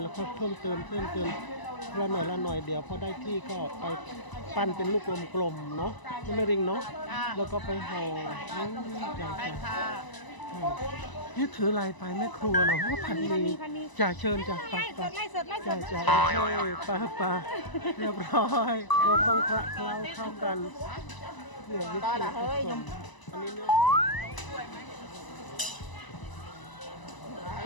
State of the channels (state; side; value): late; right; 1.0 ms